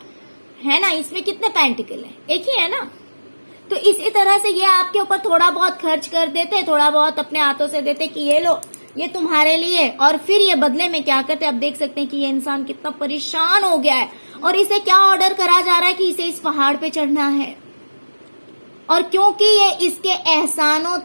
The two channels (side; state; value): both; inverted; correlation -1.00